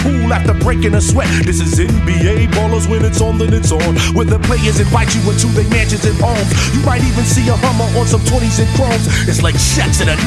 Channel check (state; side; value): identical; both; correlation 1.00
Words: pool after breaking a sweat. This is NBA ballers, when it's on then it's on, where the players invite you into their mansions and homes. You might even see a Hummer on some 20s and chromes. It's like Shaq's in a